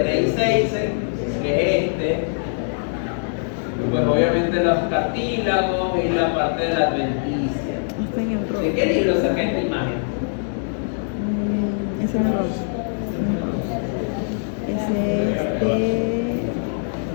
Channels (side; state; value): right; silent; digital silence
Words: Reis-Heysen, que es este. Pues obviamente los cartílagos y la parte de la adventicia. ¿De qué libro saqué esta imagen? Ese es rojo. Ese es de...